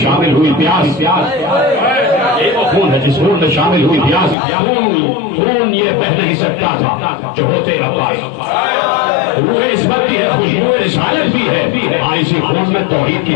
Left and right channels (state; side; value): drops out; right; at 4.4 s